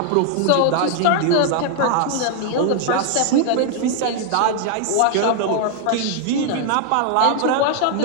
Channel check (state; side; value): different; both; correlation 0.00